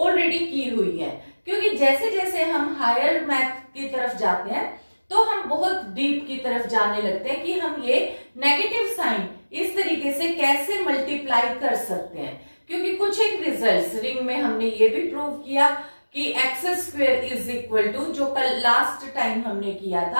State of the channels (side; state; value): both; inverted; correlation -1.00